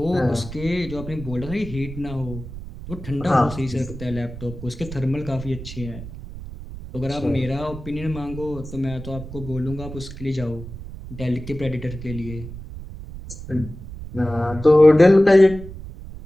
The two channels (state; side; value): noise; right; rumble, 12 dB below the sound